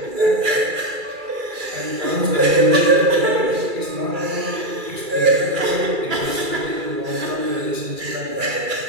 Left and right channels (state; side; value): late; left; 2.3 ms